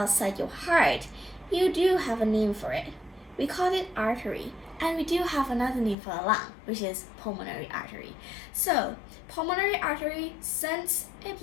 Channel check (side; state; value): right; drops out; at 6.0 s